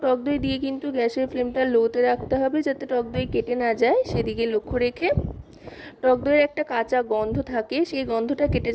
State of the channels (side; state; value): both; identical; correlation 1.00